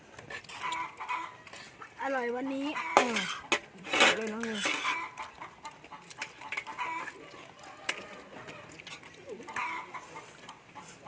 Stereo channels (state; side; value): identical; both; correlation 1.00